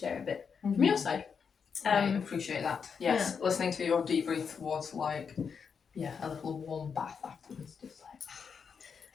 a bit from your side. I appreciate that. Yes, listening to your debrief was like, a little warm bath afterwards, just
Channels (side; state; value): right; quieter; 6.3 dB